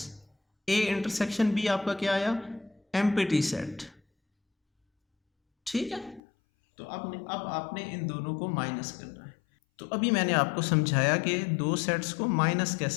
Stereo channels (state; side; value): drops out; right; at 6.2 s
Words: A इंटरसेक्शन B आपका क्या आया, एम्प्टी सेट। ठीक है, तो अब आपने इन दोनों को माइनस करना है। तो अभी मैंने आपको समझाया कि दो सेट्स को माइनस